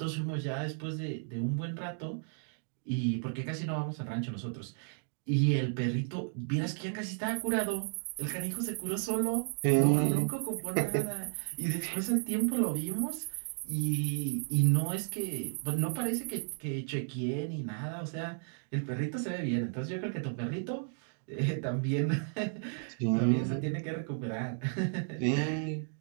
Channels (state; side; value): silent; left; digital silence